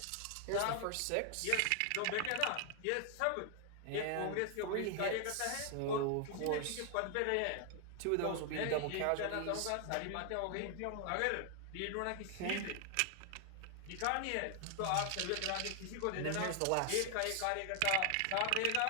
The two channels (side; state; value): both; different; correlation 0.00